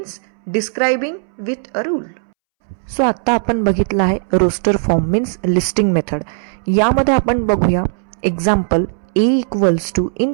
describing with a rule. So आता आपण बघितलं आहे roster form means listing method. यामध्ये आपण बघूया example A equals to in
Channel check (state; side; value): silent; left; 67 dB below the other